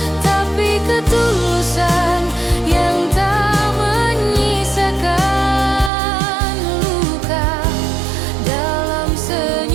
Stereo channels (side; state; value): left; drops out; at 5.9 s